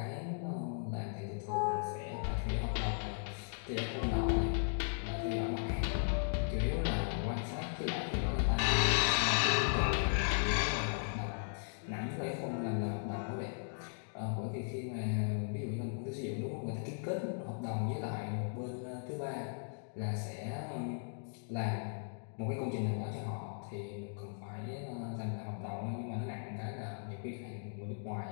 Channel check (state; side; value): silent; right; digital silence